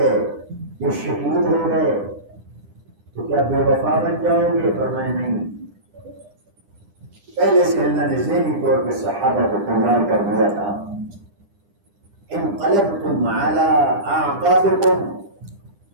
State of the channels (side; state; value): left; late; 9.9 ms